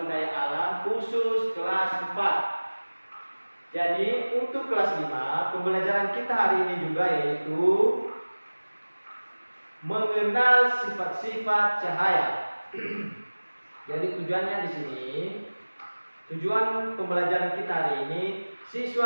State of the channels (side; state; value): both; inverted; correlation -1.00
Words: daya alam khusus kelas 4. Jadi untuk kelas 5 pembelajaran kita hari ini juga yaitu mengenal sifat-sifat cahaya. Jadi tujuannya di sini, tujuan pembelajaran kita hari ini,